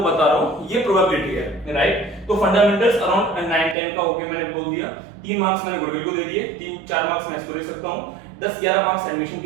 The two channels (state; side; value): drops out; left; at 3.8 s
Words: बता रहा हूँ ये प्रोबेबिलिटी है. राइट. तो फंडामेंटल्स अराउंड 9-10 का ओके मैंने बोल दिया. 3 मार्क्स मैंने गुडविल को दे दिए, 3-4 मार्क्स मैं इसको दे सकता हूँ, 10-11 मार्क्स एडमिशन